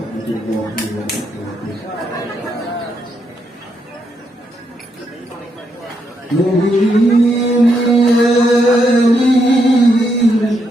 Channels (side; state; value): both; normal; correlation 0.79